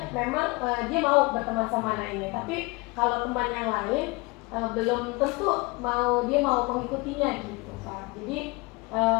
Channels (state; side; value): quieter; right; 25.9 dB